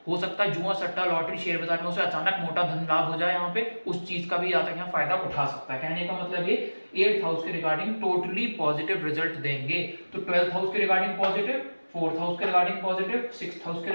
हो सकता है जुआ सट्टा लॉटरी शेयर बाजार में उसे अचानक मोटा धन लाभ हो जाए, यहाँ पे उस चीज का भी यहाँ तक यहाँ फायदा उठा सकता है। कहने का मतलब ये 8th हाउस के रिगार्डिंग टोटली पॉजिटिव रिजल्ट देंगे। तो 12th हाउस के रिगार्डिंग पॉजिटिव, 4th हाउस के रिगार्डिंग पॉजिटिव, 6th हाउस के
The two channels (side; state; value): both; inverted; correlation -1.00